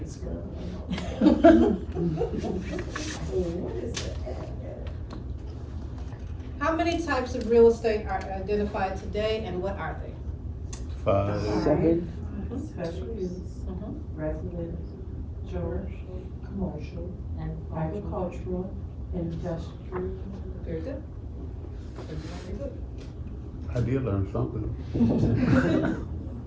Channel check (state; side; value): identical; both; correlation 1.00